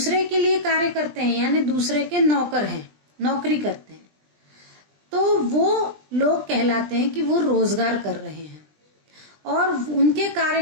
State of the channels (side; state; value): left; late; 20 ms